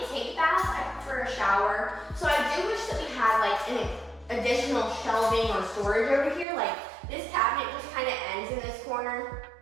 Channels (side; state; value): left; drops out; at 6.5 s